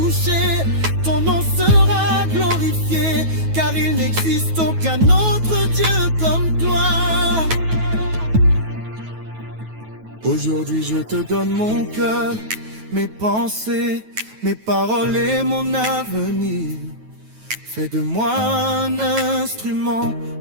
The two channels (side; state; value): left; late; 9.2 ms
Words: Ton nom sera glorifié, car il n'existe aucun autre Dieu comme toi. Aujourd'hui je te donne mon cœur, mes pensées, mes paroles et mon avenir. Fais de moi un instrument